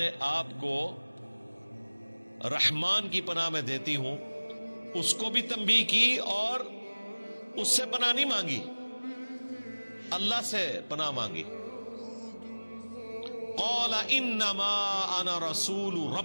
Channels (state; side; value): inverted; both; correlation -1.00